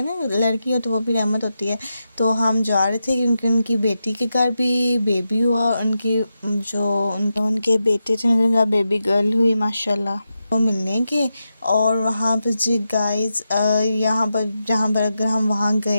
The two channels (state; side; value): inverted; both; correlation -0.89